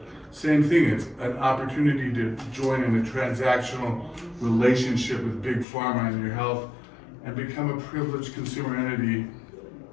Same thing, it's an opportunity to join in a transactional relationship with Big Pharma and your health and become a privileged consumer entity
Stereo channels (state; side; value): drops out; right; at 5.7 s